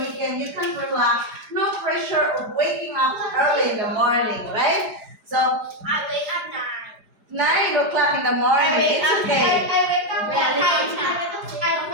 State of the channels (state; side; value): late; left; 4.9 ms